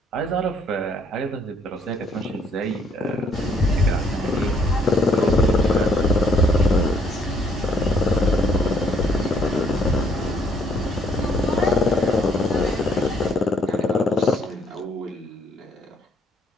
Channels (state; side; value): normal; both; correlation 0.67